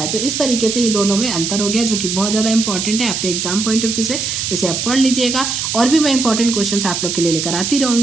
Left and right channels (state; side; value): noise; right; hiss, 2 dB below the sound